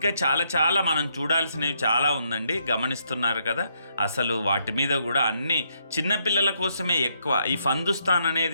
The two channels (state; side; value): inverted; both; correlation -0.75